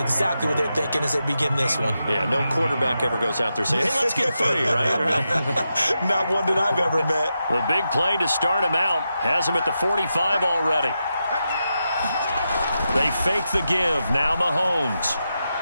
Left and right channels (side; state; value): both; inverted; correlation -0.87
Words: exactly what they're thinking as they begin this one. Yeah, no quarterback ever goes out there saying, hey, let's get 3, right? Not one that I've ever met. The big play to start him out has him at the 45 already. They fake the give. Now Mahomes.